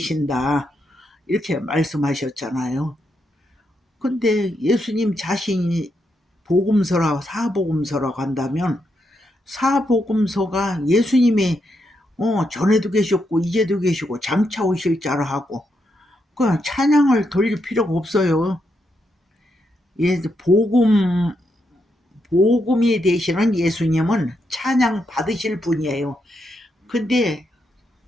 이렇게 말씀하셨잖아요. 근데 예수님 자신이 복음서라고 사복음서라고 한다면 사복음서가 예수님이 전에도 계셨고 이제도 계시고 장차 오실 자라 하고 그냥 찬양을 돌릴 필요가 없어요. 예, 복음이 되시는 예수님은 찬양 받으실 분이에요. 근데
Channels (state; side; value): normal; both; correlation 0.81